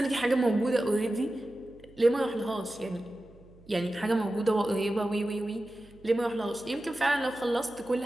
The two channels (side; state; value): right; noise; hum, 25 dB below the sound